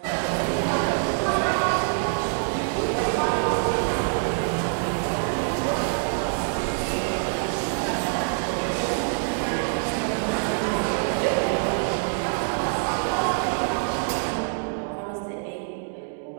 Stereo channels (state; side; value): silent; left; digital silence